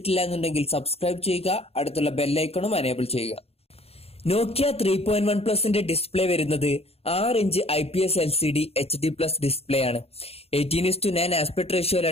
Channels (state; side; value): late; right; 0.29 ms